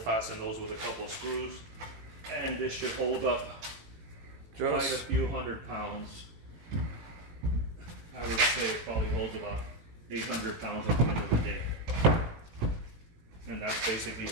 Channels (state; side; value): late; left; 18 ms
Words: those with a couple of screws. And this should hold up quite a Just, few 100 pounds. I would say it probably holds about 800 pounds at the end of the day. And that's basically